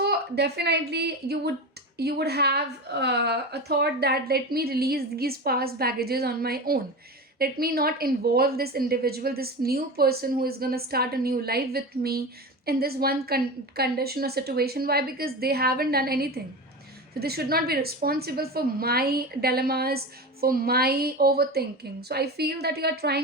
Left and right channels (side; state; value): both; normal; correlation 0.26